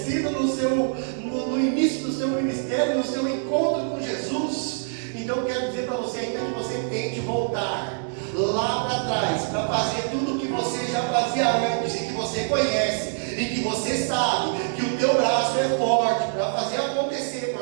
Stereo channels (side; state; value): left; silent; digital silence